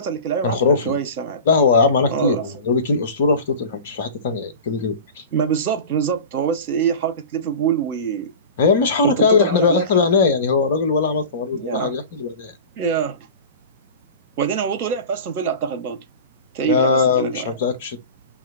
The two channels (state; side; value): inverted; both; correlation -0.33